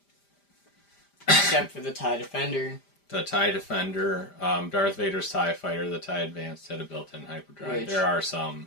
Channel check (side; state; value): right; late; 5.0 ms